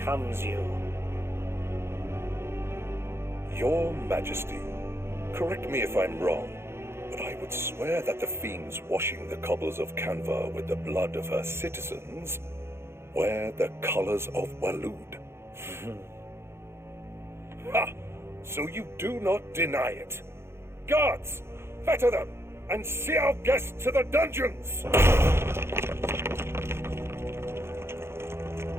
you. Your Majesty, correct me if I'm wrong, but I would swear that the fiends washing the cobbles of Canva with the blood of her citizens wear the colors of Waloed. Ha! So you do not deny it. Guards, fetter them, and see our guests to the dungeons!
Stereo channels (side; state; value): left; late; 0.12 ms